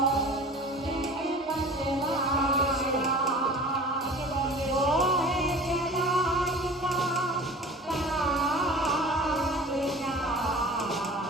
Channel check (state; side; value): normal; both; correlation 0.41